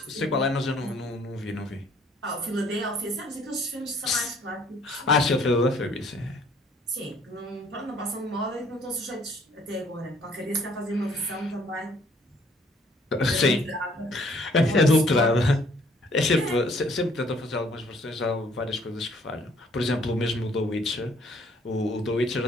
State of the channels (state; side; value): normal; both; correlation 0.61